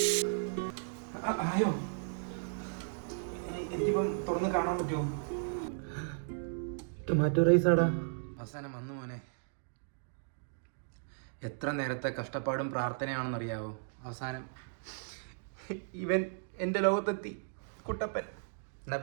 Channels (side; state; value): left; silent; digital silence